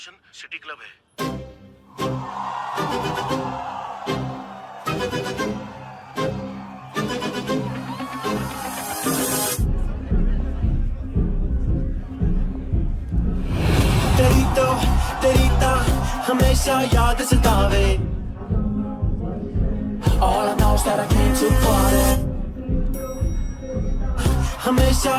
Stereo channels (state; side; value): identical; both; correlation 1.00